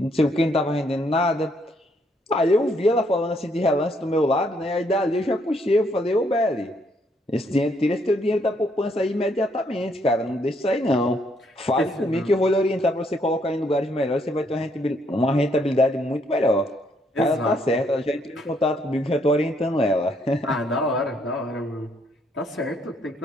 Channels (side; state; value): both; normal; correlation 0.71